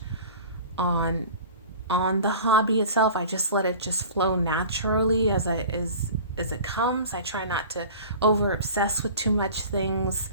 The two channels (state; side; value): inverted; both; correlation -0.40